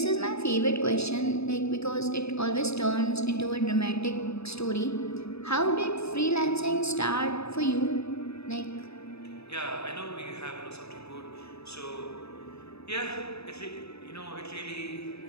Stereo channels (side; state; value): right; late; 0.79 ms